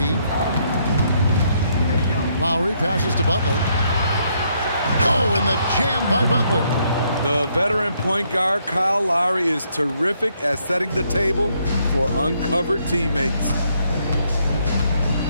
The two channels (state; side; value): inverted; both; correlation -0.72